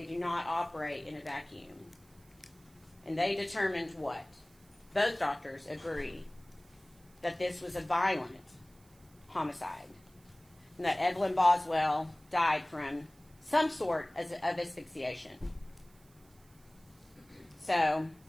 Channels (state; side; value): noise; right; hiss, 29 dB below the sound